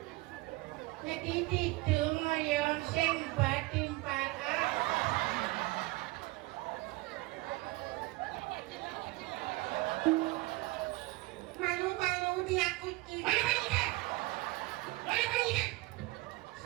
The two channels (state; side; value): quieter; left; 21.7 dB